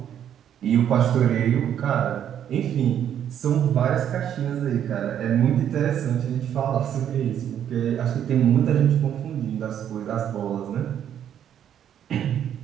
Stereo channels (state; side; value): quieter; left; 9.7 dB